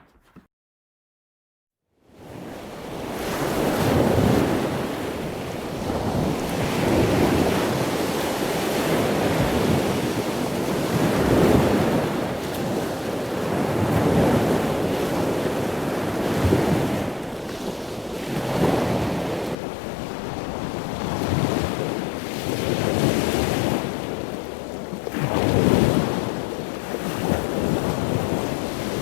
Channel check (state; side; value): drops out; right; at 19.6 s